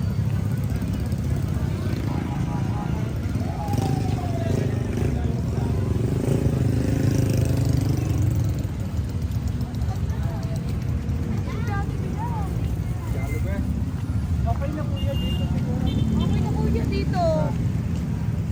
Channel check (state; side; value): identical; both; correlation 1.00